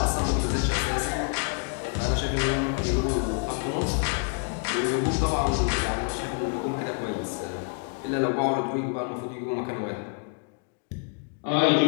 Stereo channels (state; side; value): quieter; right; 39.8 dB